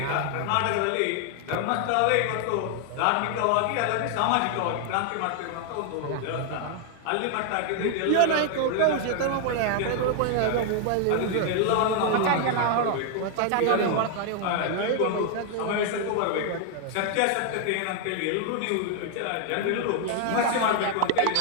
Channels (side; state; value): both; different; correlation 0.00